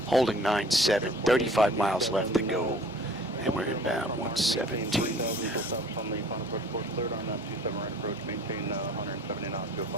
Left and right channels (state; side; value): normal; both; correlation 0.50